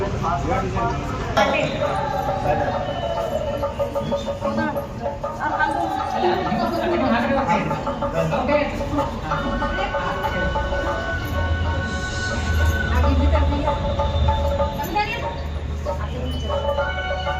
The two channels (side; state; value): both; identical; correlation 1.00